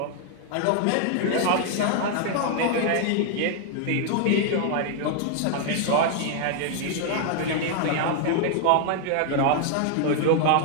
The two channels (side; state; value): both; different; correlation 0.00